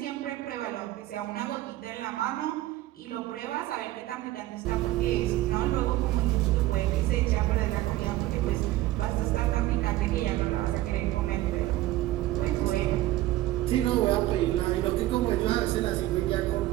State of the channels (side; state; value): left; quieter; 16.0 dB